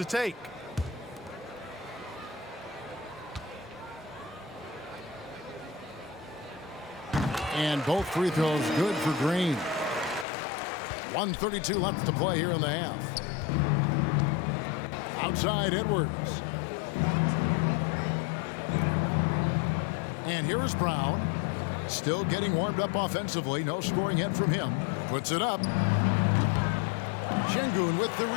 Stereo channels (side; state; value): right; drops out; at 10.2 s